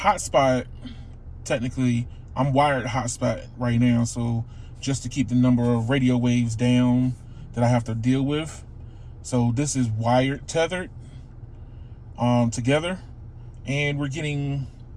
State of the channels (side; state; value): both; identical; correlation 1.00